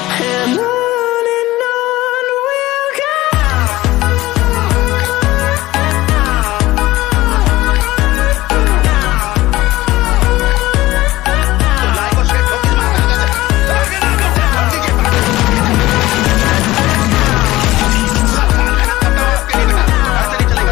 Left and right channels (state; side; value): quieter; right; 17.6 dB